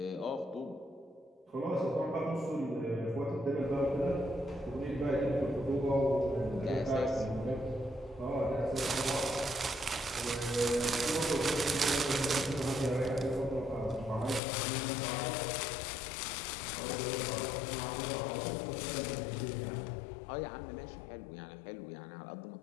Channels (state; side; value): drops out; right; at 14.4 s